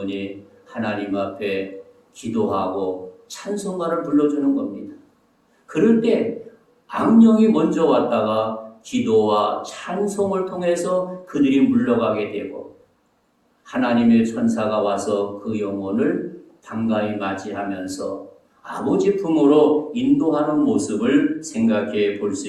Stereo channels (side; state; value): both; identical; correlation 1.00